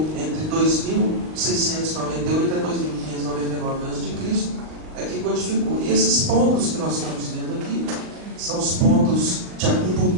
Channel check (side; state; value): left; late; 39 ms